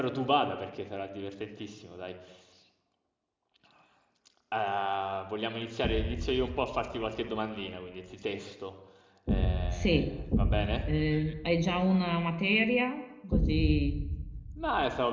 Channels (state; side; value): identical; both; correlation 1.00